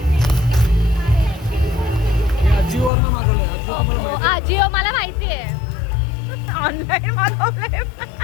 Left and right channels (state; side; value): drops out; right; at 2.9 s